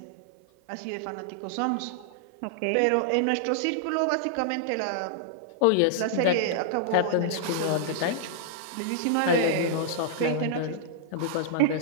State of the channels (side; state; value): both; different; correlation -0.01